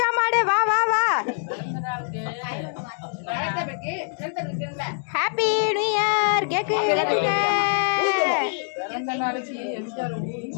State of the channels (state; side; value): silent; right; digital silence